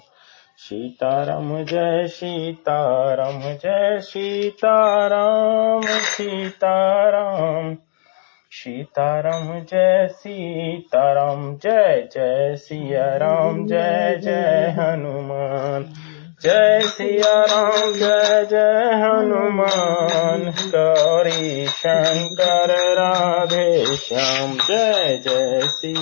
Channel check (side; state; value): right; silent; digital silence